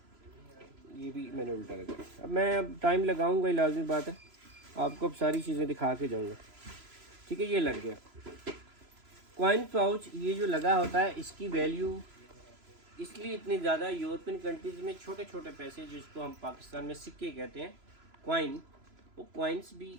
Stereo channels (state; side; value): late; left; 3.0 ms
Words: ये भी मैंने उल्टा लगा। अब मैं टाइम लगाऊंगा, लाजमी बात है, आपको अब सारी चीज़ें दिखा के जाऊंगा, ठीक है। ये लग गया कॉइन पाउच। ये जो लगा होता है इसकी वैल्यू इसलिए इतनी ज़्यादा, यूरोपियन कंट्रीज़ में छोटे छोटे पैसे जिसको हम पाकिस्तान में सिक्के कहते हैं, कॉइन, वो कॉइन्स